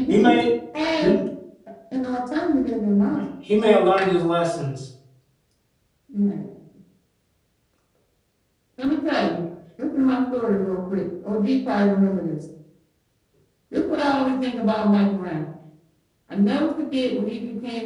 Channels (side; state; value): both; identical; correlation 1.00